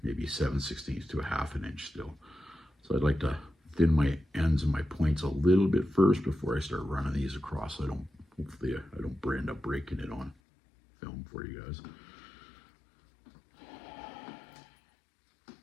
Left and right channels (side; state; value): right; drops out; at 10.4 s